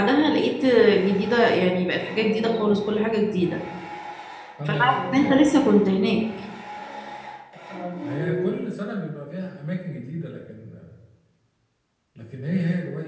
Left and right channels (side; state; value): both; identical; correlation 1.00